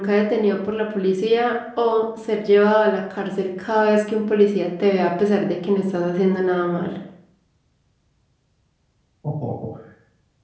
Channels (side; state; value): both; identical; correlation 1.00